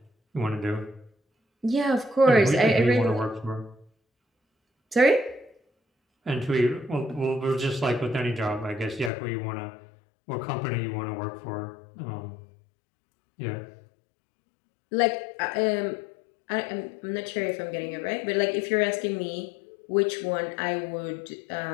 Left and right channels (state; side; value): drops out; right; at 9.1 s